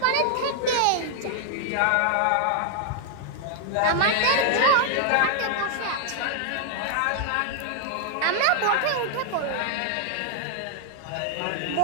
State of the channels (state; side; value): different; both; correlation 0.00